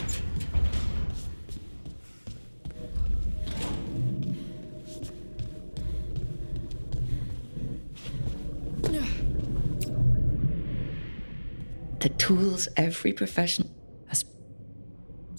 The tools every professional has.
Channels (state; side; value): inverted; both; correlation -1.00